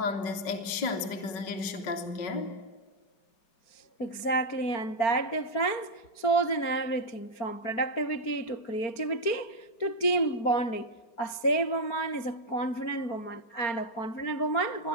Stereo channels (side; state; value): right; late; 4.4 ms